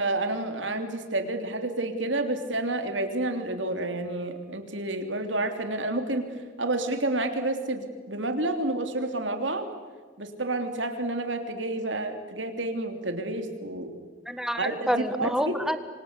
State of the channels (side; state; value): both; normal; correlation 0.03